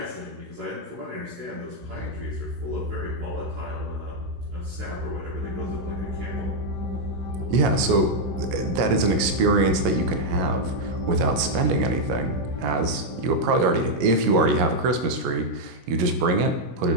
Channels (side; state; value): left; late; 17 ms